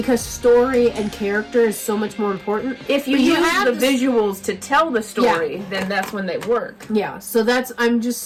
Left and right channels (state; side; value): identical; both; correlation 1.00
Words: story and character is so much more important. If you use the visuals to tell the story, then that's when they work. Yeah, so I'm